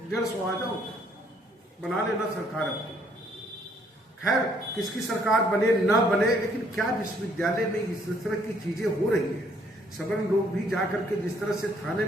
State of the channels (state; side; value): normal; both; correlation 0.65